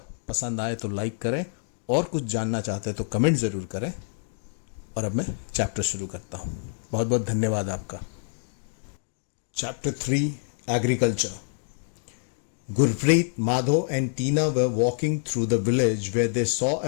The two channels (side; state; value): right; silent; digital silence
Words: पसंद आए तो लाइक करें, और कुछ जानना चाहते हैं तो कमेंट ज़रूर करें। और अब मैं चैप्टर शुरू करता हूँ। बहुत बहुत धन्यवाद आपका। Chapter 3 agriculture. Gurpreet, Madho and Tina were walking through the village where they saw